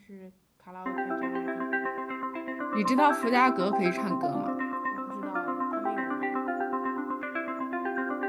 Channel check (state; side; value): identical; both; correlation 1.00